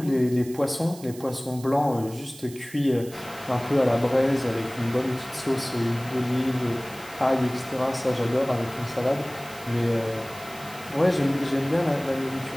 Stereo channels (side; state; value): right; noise; hiss, 18 dB below the sound